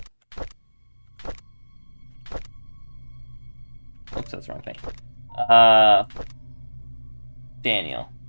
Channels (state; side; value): inverted; both; correlation -1.00